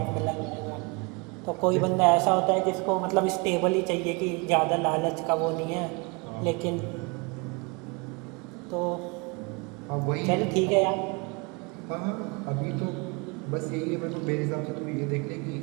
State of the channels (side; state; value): left; quieter; 29.4 dB